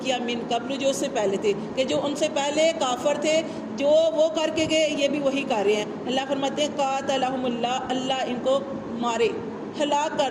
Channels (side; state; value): both; identical; correlation 1.00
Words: کیا، من قبل، جو اس سے پہلے تھے، کہ جو ان سے پہلے کافر تھے، جو وہ کر کے گئے یہ بھی وہی کر رہے ہیں. اللہ فرماتے ہیں قاتلہم اللہ، اللہ ان کو مارے، ہلاک